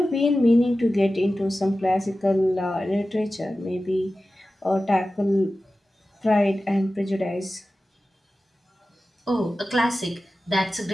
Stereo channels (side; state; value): both; normal; correlation 0.95